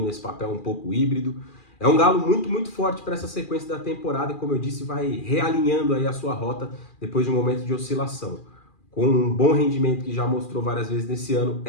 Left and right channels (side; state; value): right; late; 2.4 ms